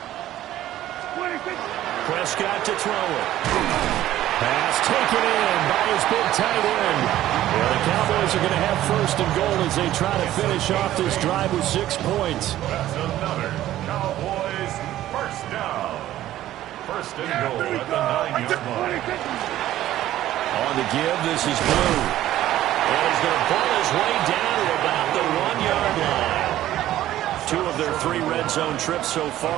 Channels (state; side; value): quieter; left; 13.6 dB